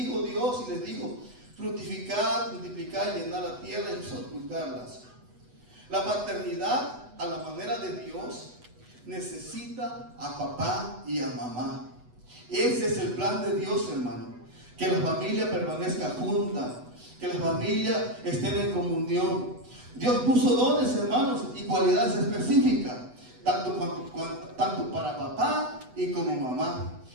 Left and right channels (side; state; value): left; late; 8.1 ms